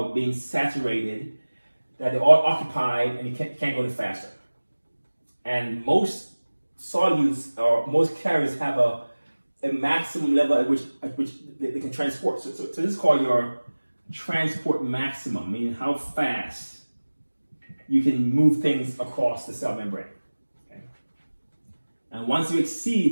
being saturated, that they're all occupied and you can't go any faster. And most solutes or most carriers have a maximum level at which they can transport. So this is called your transport maximum, meaning how fast you can move things across the cell membrane. Okay? And once you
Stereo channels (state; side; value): inverted; both; correlation -1.00